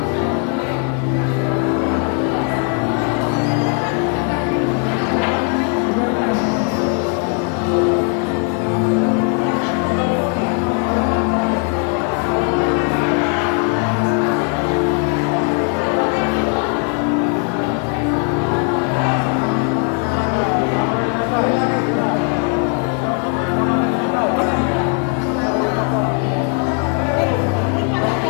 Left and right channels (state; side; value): quieter; right; 39.9 dB